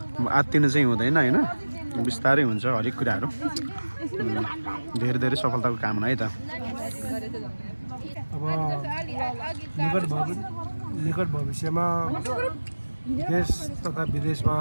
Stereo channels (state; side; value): inverted; both; correlation -1.00